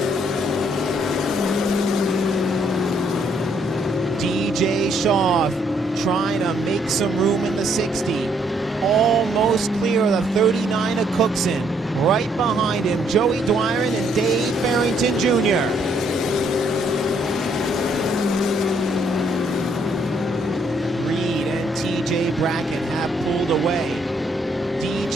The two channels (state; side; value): normal; both; correlation 0.69